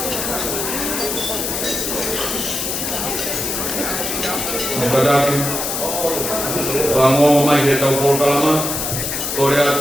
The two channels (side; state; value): left; noise; hiss, 2 dB below the sound